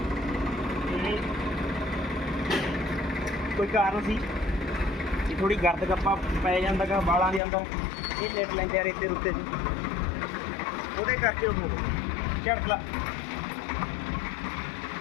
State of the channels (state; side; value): drops out; right; at 7.4 s